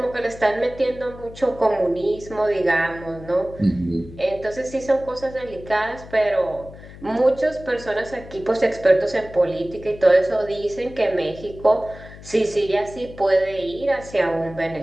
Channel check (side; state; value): left; noise; hum, 17 dB below the sound